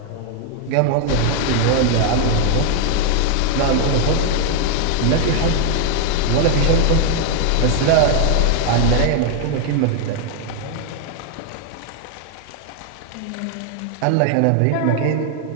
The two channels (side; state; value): both; different; correlation 0.00